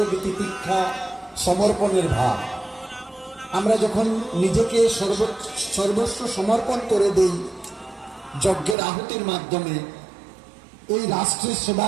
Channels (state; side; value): drops out; left; at 8.8 s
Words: তিতিক্ষা, সমর্পণের ভাব। আমরা যখন নিজেকে সর্বস্ব সমর্পণ করে দেই যজ্ঞের আহুতির মাধ্যমে, এই রাষ্ট্রের